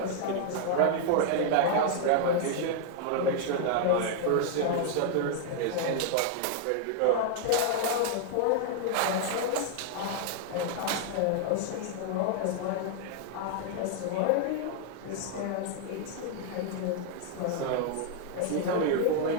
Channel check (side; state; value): both; different; correlation 0.00